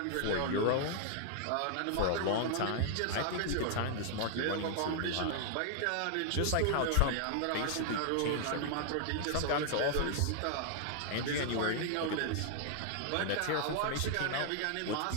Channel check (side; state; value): both; different; correlation 0.00